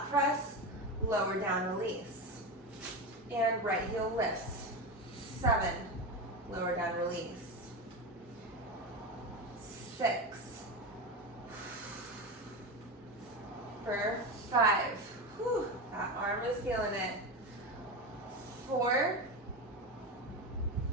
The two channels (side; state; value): both; normal; correlation 0.19